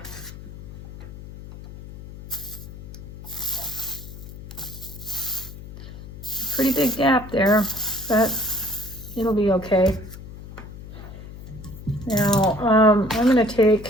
Pretty big gap there, but it'll be okay. Now, I'm going to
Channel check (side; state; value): left; noise; hum, 14 dB below the sound